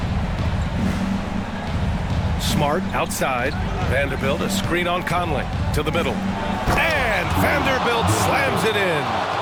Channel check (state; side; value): identical; both; correlation 1.00